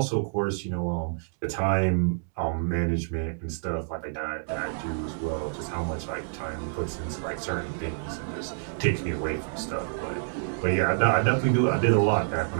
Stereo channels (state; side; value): silent; left; digital silence